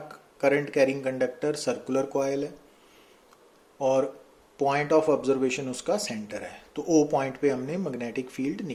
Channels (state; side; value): identical; both; correlation 1.00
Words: current carrying conductor circular coil है और पॉइंट ऑफ ऑब्जर्वेशन उसका सेंटर है। तो ओ पॉइंट पे हमने मैग्नेटिक फील्ड